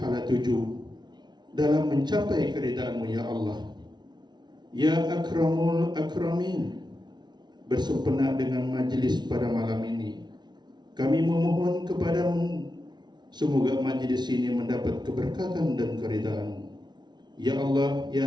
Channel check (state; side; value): late; left; 0.20 ms